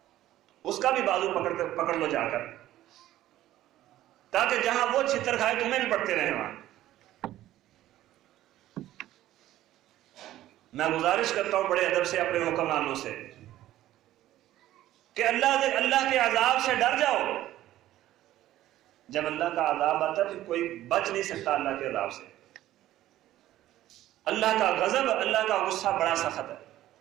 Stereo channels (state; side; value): quieter; left; 14.0 dB